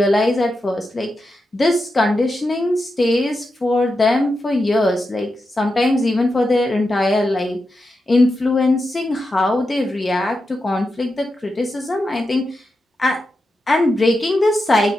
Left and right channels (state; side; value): normal; both; correlation 0.88